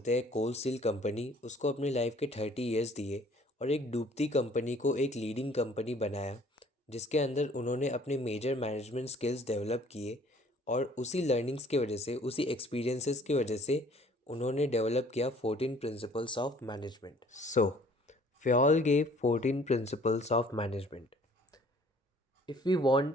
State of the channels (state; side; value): normal; both; correlation 0.56